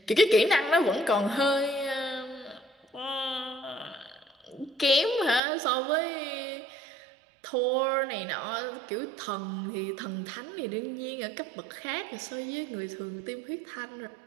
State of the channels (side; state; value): left; drops out; at 5.4 s